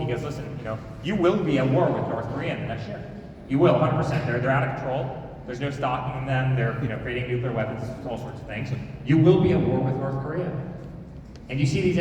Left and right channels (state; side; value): identical; both; correlation 1.00